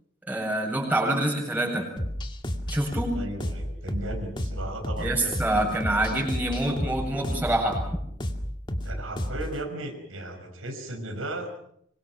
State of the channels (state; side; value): normal; both; correlation 0.69